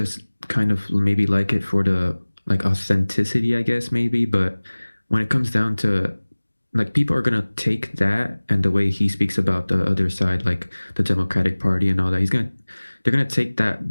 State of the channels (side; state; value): both; inverted; correlation -1.00